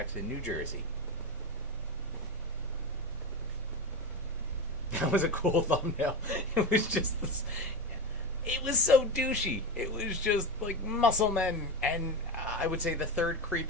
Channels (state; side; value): normal; both; correlation 0.20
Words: New Jersey. That was a cool thumbnail. It was just this, it was so douchey. It was just like muscle men. And I would say the third